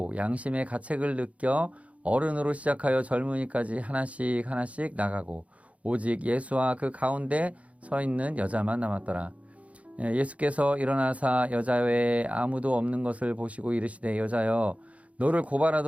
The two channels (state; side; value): late; left; 0.065 ms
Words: 양심의 가책을 느껴 어른으로 시작하여 젊은이까지 하나씩 나가고 오직 예수와 그 가운데 서 있는 여자만 남았더라. 예수께서 일어나사 여자 외에 아무도 없는 것을 보시고 이르시되 여자여 너를